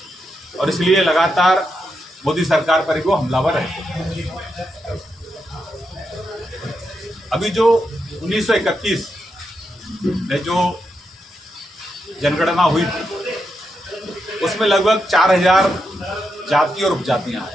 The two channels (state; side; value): normal; both; correlation 0.84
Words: और इसलिए लगातार मोदी सरकार पर वो हमलावर रहते हैं। अभी जो 1931 में जो जनगणना हुई थी उसमें लगभग 4000 जाति और उपजातियां